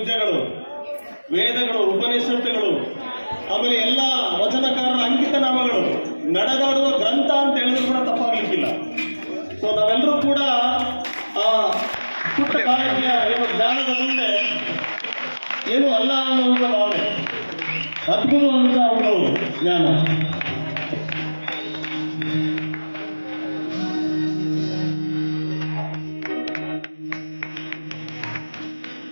ವೇದಗಳು, ಉಪನಿಷತ್ತುಗಳು, ಆಮೇಲೆ ಎಲ್ಲ ವಚನಕಾರರ ಅಂಕಿತ ನಾಮಗಳು, ನಡೆದಾಡುವ ಗ್ರಂಥ ಅಂತ ಹೇಳಿದ್ರು ಕೂಡ ತಪ್ಪಾಗ್ಲಿಕ್ಕಿಲ್ಲ. ಸೊ ನಾವೆಲ್ಲರೂ ಕೂಡ ಆ ಪುಟ್ಟ ಕಾಲಕ್ಕೆ ಏನು ಜ್ಞಾನದ ಮುಂದೆ ಏನು ಅಲ್ಲ ಅನ್ನುವಂಥ ಭಾವನೆ, ಅದ್ಭುತವಂತ ಅವರು ಜ್ಞಾನ.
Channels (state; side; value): inverted; both; correlation -1.00